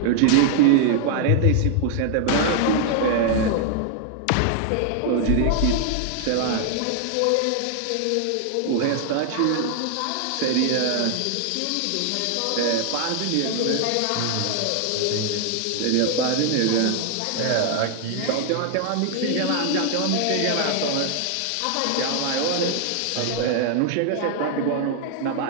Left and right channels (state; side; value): different; both; correlation 0.00